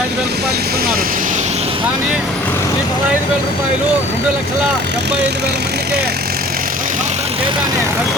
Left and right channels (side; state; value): both; normal; correlation 0.48